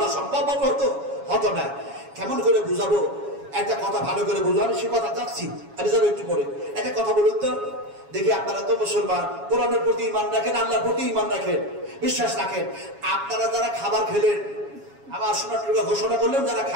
সম্ভব হতো না। কেমন করে বুঝাবো? একটা কথা ভালো করে বুঝবো, আমি সে কথা যাচ্ছি, আমি যাবো একটু পরে। একটা কথা বলুন তো দেখি, আপনারা তো মুসলমান, কোরআনের প্রতি ঈমান রাখেন, আল্লাহর প্রতি ঈমান রাখেন, বিশ্বাস রাখেন। আপনারা যারা খাবার খেলেন, আমার শোনার ঘোষণা করলেন যারা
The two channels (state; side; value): late; left; 7.2 ms